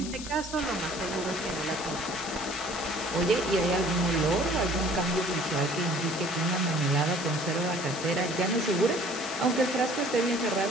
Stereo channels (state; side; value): noise; left; hiss, 10 dB below the sound